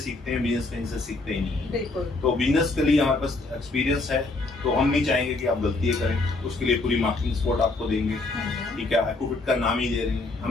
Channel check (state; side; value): quieter; right; 3.3 dB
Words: हैं, बिजनेस कहीं से सीखते ही नहीं है। तो बिजनेस के लिए हमारे पास एक्सपीरियंस है, तो हम नहीं चाहेंगे कि आप गलतियां करें। उसके लिए पूरी मार्केटिंग सपोर्ट आपको देंगे। ठीक है। एक्यूफिट का नाम ही दे रहे हैं,